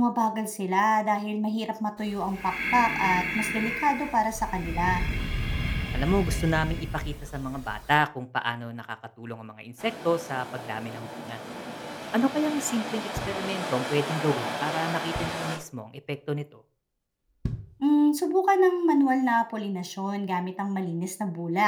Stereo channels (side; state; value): both; identical; correlation 1.00